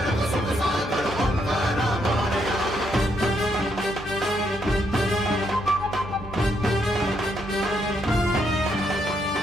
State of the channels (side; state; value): both; normal; correlation 0.76